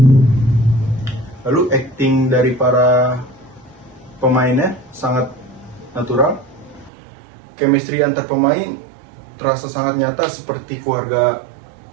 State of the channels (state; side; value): drops out; left; at 6.9 s